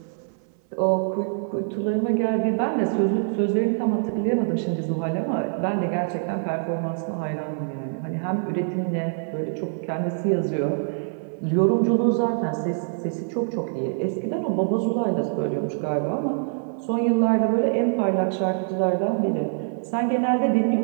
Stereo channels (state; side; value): silent; left; 58 dB below the other